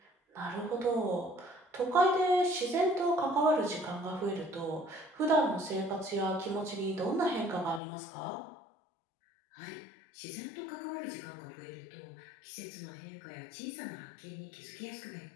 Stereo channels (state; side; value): drops out; right; at 7.8 s